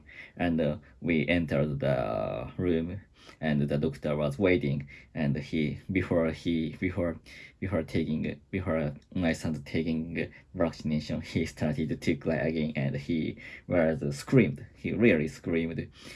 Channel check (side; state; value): both; identical; correlation 1.00